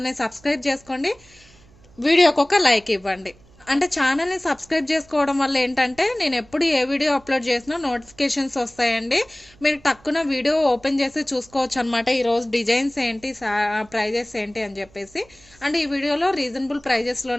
సబ్స్క్రైబ్ చేసుకోండి, వీడియోకి ఒక లైక్ ఇవ్వండి. అంటే ఛానల్ని సబ్స్క్రైబ్ చేసుకోవడం వల్ల ఏంటంటే నేను ఎప్పుడు ఏ వీడియో అప్లోడ్ చేసినా నోటిఫికేషన్స్ వస్తాయండి. మీరు టక్కున వీడియో ఓపెన్ చేసి చూసుకోవచ్చు అనమాట. ఈరోజు డిజైన్స్ ఏంటి, ప్రైజెస్ ఏంటి అని చెప్పేసి. అండ్ ఈ వీడియోలో రీజనబుల్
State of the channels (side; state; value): right; noise; hum, 27 dB below the sound